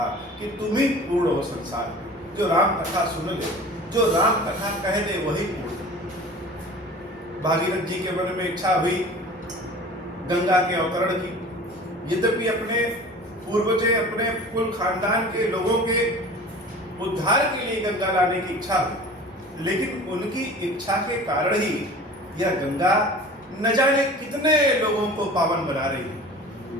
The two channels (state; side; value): normal; both; correlation 0.41